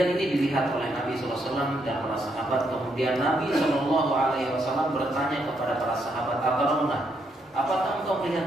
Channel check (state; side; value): normal; both; correlation 0.76